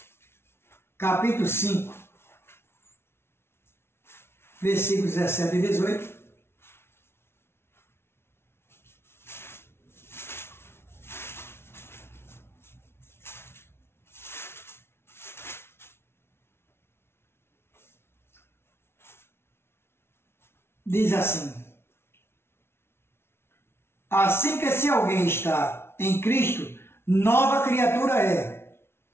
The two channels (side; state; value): right; late; 0.12 ms